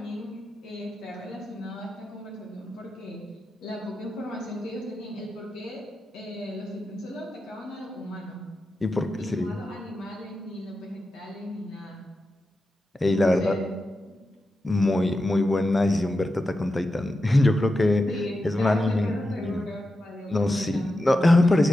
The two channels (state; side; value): normal; both; correlation 0.90